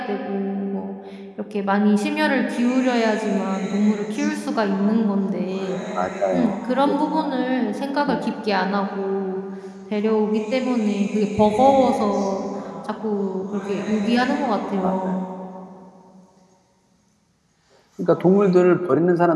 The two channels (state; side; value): identical; both; correlation 1.00